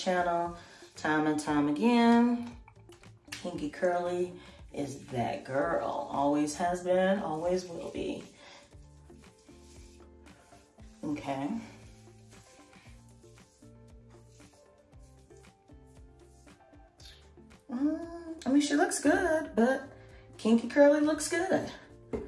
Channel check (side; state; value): both; identical; correlation 1.00